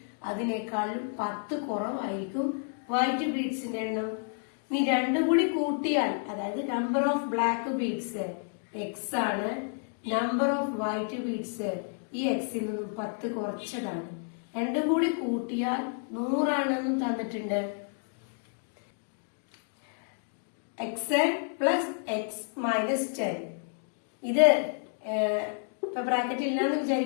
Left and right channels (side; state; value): right; silent; 55 dB below the other